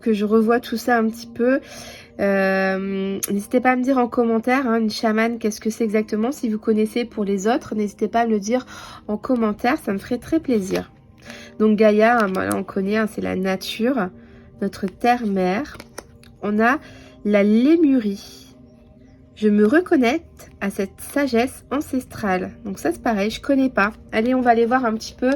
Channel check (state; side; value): identical; both; correlation 1.00